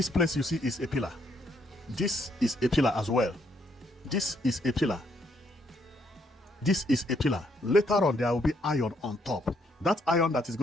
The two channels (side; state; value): both; normal; correlation 0.72